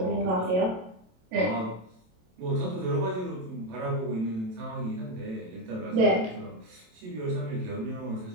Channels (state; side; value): late; left; 27 ms